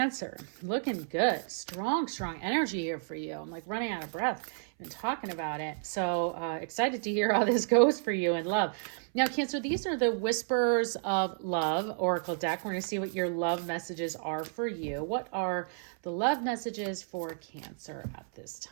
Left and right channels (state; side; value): silent; left; 57 dB below the other